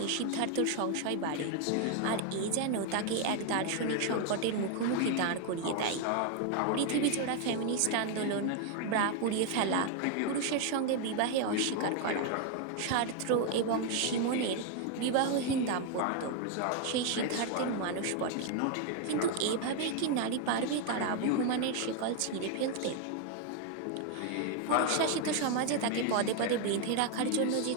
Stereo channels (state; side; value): different; both; correlation 0.01